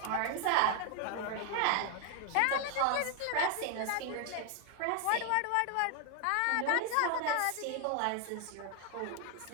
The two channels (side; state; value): both; different; correlation 0.00